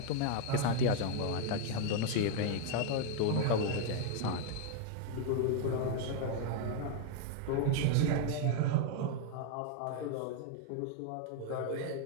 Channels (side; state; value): both; different; correlation 0.00